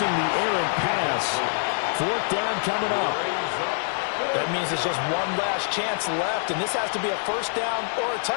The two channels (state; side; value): silent; right; digital silence